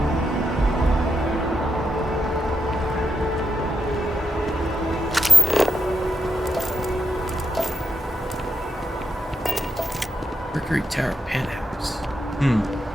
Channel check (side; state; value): both; normal; correlation 0.84